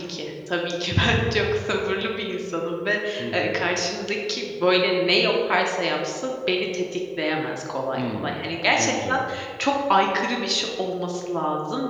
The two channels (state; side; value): identical; both; correlation 1.00